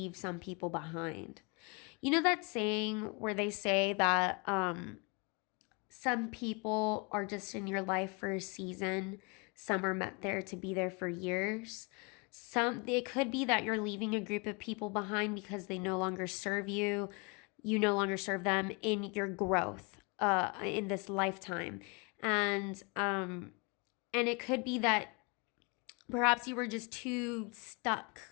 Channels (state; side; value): quieter; right; 31.3 dB